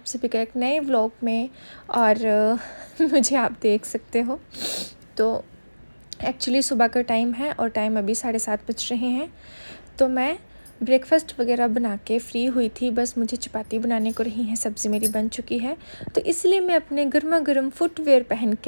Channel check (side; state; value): both; inverted; correlation -1.00